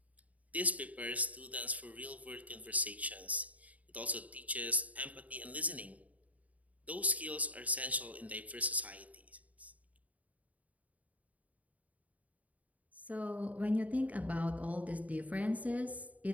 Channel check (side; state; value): left; late; 0.071 ms